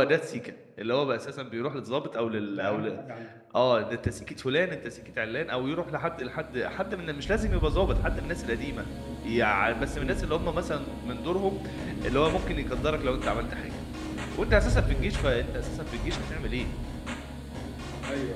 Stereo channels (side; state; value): both; identical; correlation 1.00